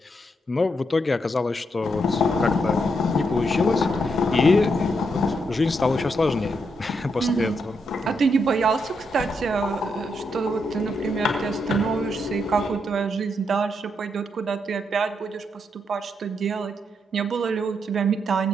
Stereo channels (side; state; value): both; normal; correlation 0.80